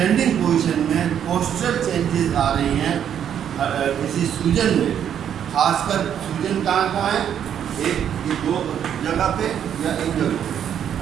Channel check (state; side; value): quieter; left; 9.2 dB